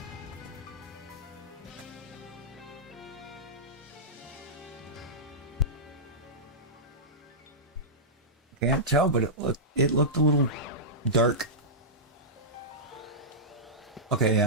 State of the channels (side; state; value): both; normal; correlation -0.13